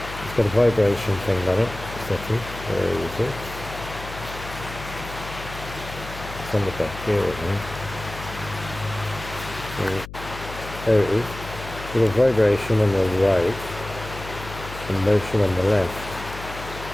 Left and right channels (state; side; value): noise; left; hum, 12 dB below the sound